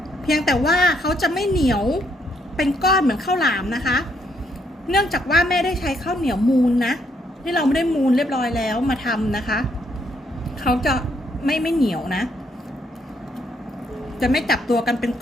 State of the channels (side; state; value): both; normal; correlation 0.72